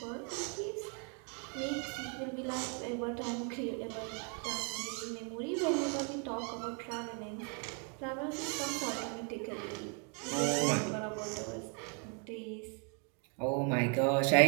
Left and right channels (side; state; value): left; quieter; 38.7 dB